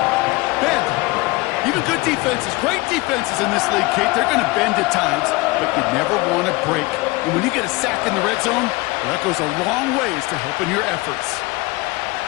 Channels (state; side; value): quieter; right; 22.9 dB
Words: Even good defenses, great defenses in this league, Kate, they're going to bend at times, but you never want to break. And when you get a sack in the red zone, well, that goes a long ways to helping your efforts.